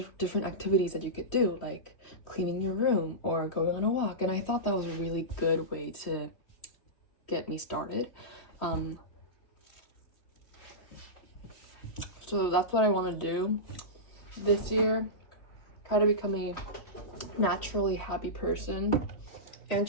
activities that you could do, like cleaning your room or going on a walk, and I thought that was a really good way to get me started. So that's what I want to do this year, try to become a naturally happy person and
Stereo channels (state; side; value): late; right; 3.1 ms